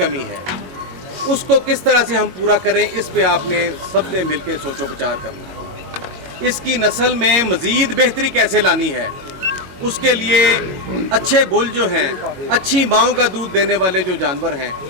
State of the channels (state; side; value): late; left; 21 ms